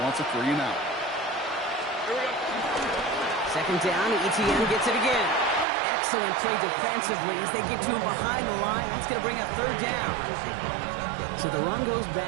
wants a 3 and out. 2nd down, Etienne gets it again. Excellent play defensively as they get to him behind the line. That's going to bring up 3rd down. So the run goes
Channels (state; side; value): drops out; left; at 5.7 s